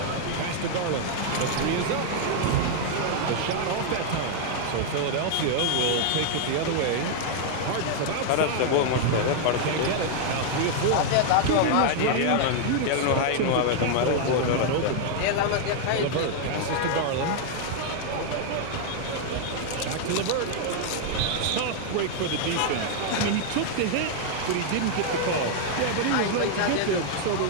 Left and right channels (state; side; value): different; both; correlation 0.00